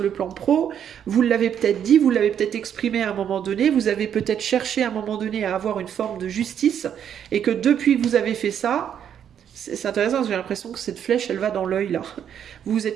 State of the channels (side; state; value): left; quieter; 9.0 dB